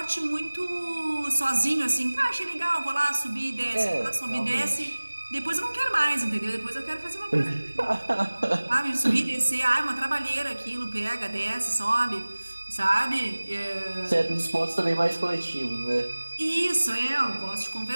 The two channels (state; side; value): inverted; both; correlation -1.00